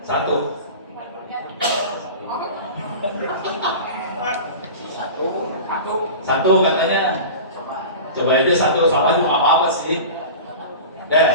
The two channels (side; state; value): both; inverted; correlation -0.33